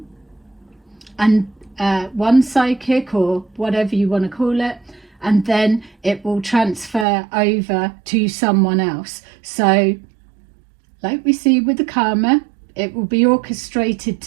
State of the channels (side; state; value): left; drops out; at 7.1 s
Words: psychic or whatever you want to call it, and then it will transfer over to someone else. So like we see with the karma, it will be orchestrated